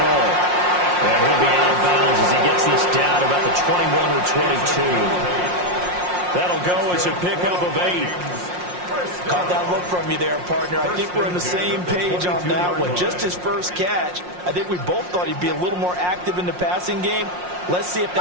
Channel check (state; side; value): late; left; 5.6 ms